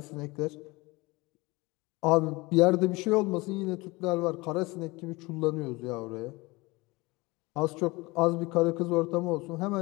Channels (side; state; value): right; quieter; 23.3 dB